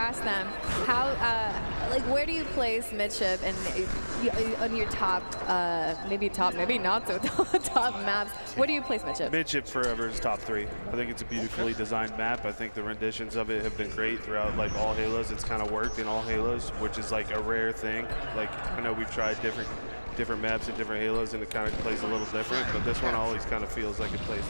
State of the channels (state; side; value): inverted; both; correlation -1.00